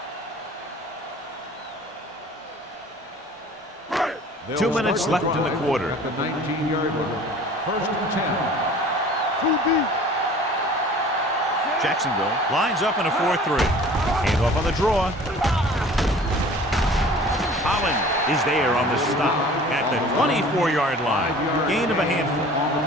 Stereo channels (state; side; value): normal; both; correlation 0.46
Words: They'll 2 minutes left in the quarter. At the 19-yard line. First and 10. 2 deep. Jacksonville lines up in a 4-3. Handoff on the draw. Holland is there on the stop at the 24-yard line. Gain of a handful.